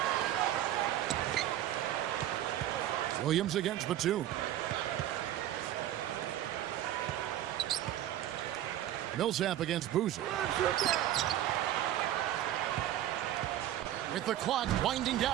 Williams against Batum. Millsap against Boozer. With the clock winding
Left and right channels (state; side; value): quieter; left; 12.5 dB